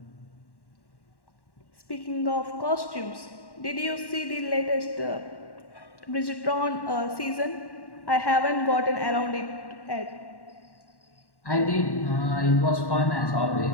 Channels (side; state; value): right; late; 1.1 ms